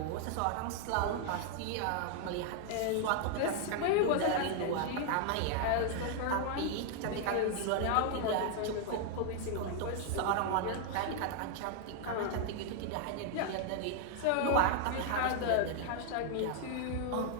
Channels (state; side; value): different; both; correlation 0.00